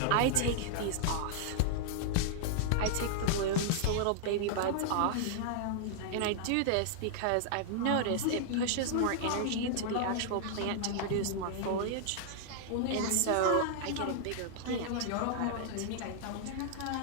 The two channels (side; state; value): both; different; correlation -0.01